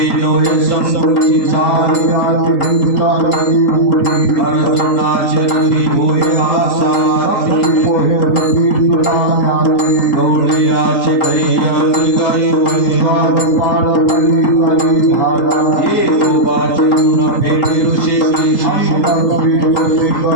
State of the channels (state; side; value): late; right; 4.5 ms